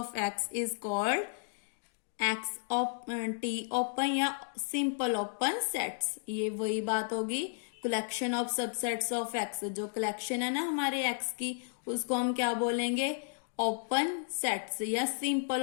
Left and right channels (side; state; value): right; silent; digital silence